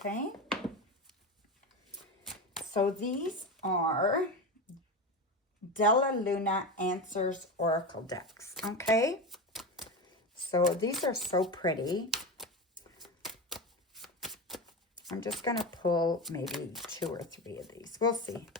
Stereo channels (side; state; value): both; normal; correlation 0.22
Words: So these are Della Luna Answers Oracle decks, okay? So these are so pretty. I'm just going to pull maybe 2 or 3 of these. We'll see.